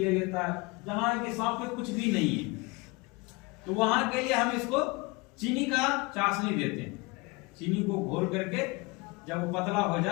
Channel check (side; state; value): right; quieter; 26.1 dB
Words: लेता है। जहाँ के सांप में कुछ भी नहीं है तो वहां के लिए हम इसको चीनी का चाशनी देते हैं। चीनी को घोल करके जब वो पतला हो